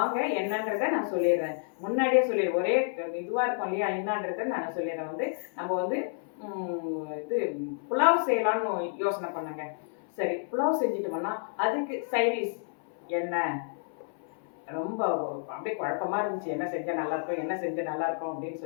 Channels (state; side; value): silent; right; 58 dB below the other